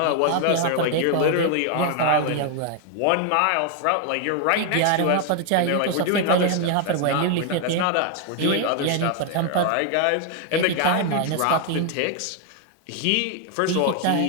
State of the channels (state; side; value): different; both; correlation 0.00